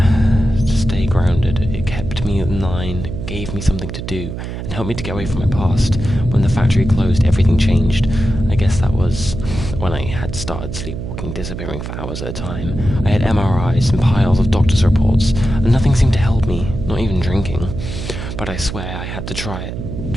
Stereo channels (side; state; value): right; noise; hum, 7 dB below the sound